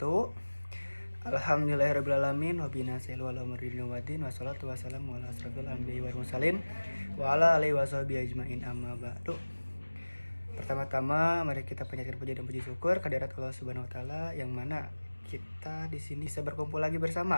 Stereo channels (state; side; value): inverted; both; correlation -1.00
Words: Alhamdulillahirrabbilalamin. Wabinasilu ala murdin wadin. Wassalatu wassalamu ala asrafil anbiya wal mursalin wa ala alihi washabihi ajmain amma ba'du. Pertama-tama mari kita panjatkan puji dan puji syukur kehadirat Allah Subhanahu wa taala yang mana kita di sini bisa berkumpul lagi